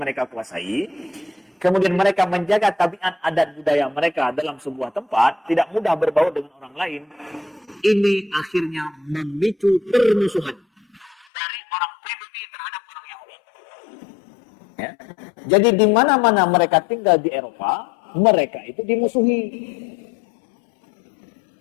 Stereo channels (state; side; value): drops out; right; at 11.2 s